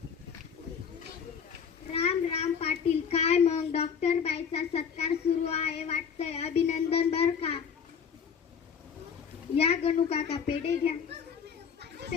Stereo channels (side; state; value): right; quieter; 6.9 dB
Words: राम राम पाटील, काय मग डॉक्टर बाईचा सत्कार सुरू आहे वाटतंय. अभिनंदन बर का. या गणू काका, पेढे घ्या.